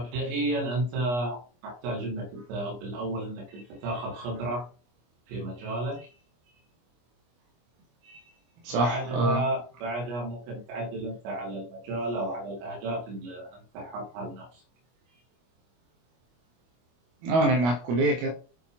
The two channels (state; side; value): late; left; 25 ms